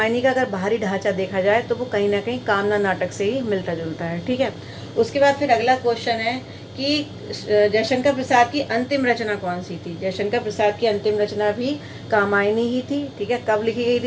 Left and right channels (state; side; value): identical; both; correlation 1.00